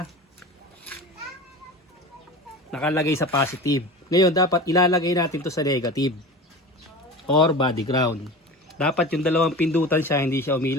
Nakalagay sa positive. Ngayon, dapat ilalagay natin to sa negative. Or body ground. Dapat yung dalawang pindutan siya, hindi siya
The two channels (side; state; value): both; normal; correlation 0.32